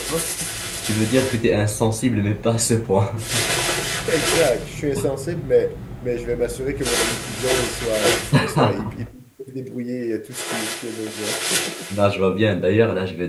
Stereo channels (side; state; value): both; identical; correlation 1.00